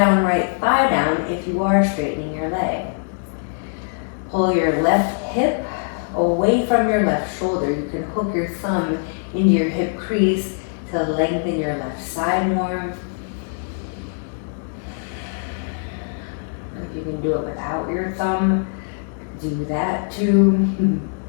right thigh down if you are straightening your leg. Pull your left hip away from your left shoulder. You can hook your thumb into your hip crease to lengthen your left side more. If you can do it without your thumb, do that too.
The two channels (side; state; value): right; silent; 64 dB below the other